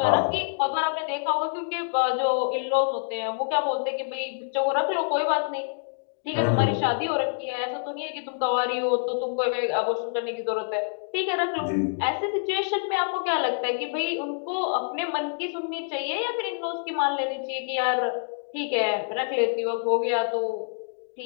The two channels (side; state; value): right; silent; digital silence